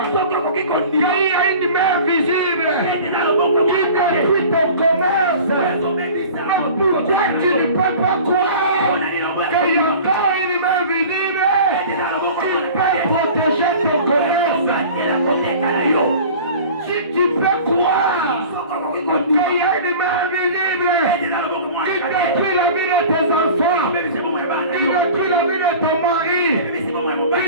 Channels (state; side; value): inverted; both; correlation -0.41